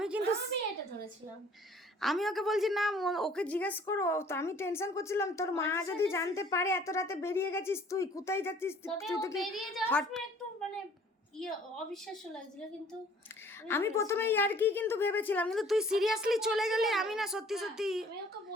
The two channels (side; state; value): both; normal; correlation 0.55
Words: কিন্তু আমি এটা ধরেছিলাম। আমি ওকে বলছি না ওকে জিজ্ঞেস করো, তো আমি টেনশন করছিলাম তোর মা যদি জানতে পারে এত রাতে বেরিয়ে গেছিস, তুই কোথায় যাচ্ছিস? তবে তুই ও তো কি বেরিয়ে যাওয়ার হট- সময় একটু মানে অবিশ্বাস্য লাগছিল, কিন্তু আমি প্রথমে আর কি কিন্তু ভেবেছিলাম, কিন্তু তুই সিরিয়াসলি চলে গেলে আমি না সত্যি আমি ওকে